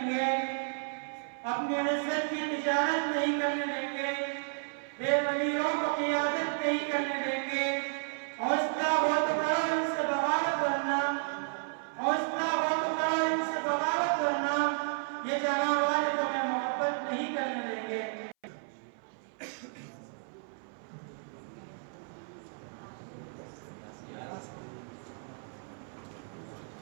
گے، اپنی عزت کی تجارت نہیں کرنے دیں گے، بے ضمیروں کو قیادت نہیں کرنے دیں گے، حوصلہ بہت کرو ان سے بغاوت کرنا، حوصلہ بہت کرو ان سے بغاوت کرنا، یہ جہاں والے تمہیں محبت نہیں کرنے دیں گے۔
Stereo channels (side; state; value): left; silent; 56 dB below the other